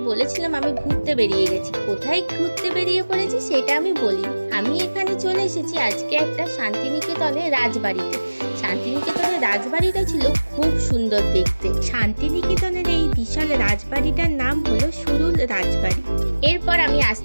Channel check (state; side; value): inverted; both; correlation -1.00